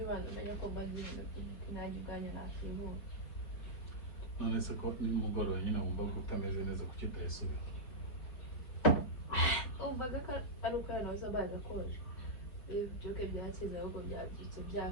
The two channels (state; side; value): late; right; 5.4 ms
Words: abantu bajya ko bazira kunajya ubwanya nakibu. None se ko nimugoroba nyine wumva ko utameze neza kuki utayisubira. Umvaga ko ari uko yanoza baza koje. Ibyo byakize ahubwo byabyitse